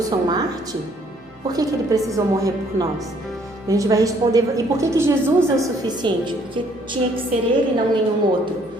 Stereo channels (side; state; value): both; normal; correlation 0.64